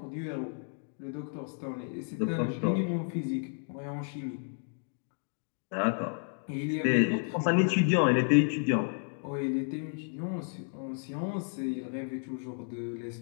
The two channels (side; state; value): right; silent; 56 dB below the other